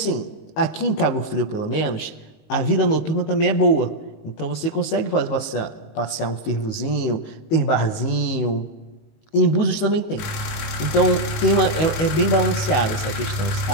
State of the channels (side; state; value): right; late; 19 ms